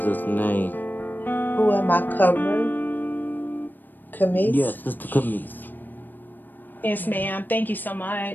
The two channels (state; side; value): late; right; 0.090 ms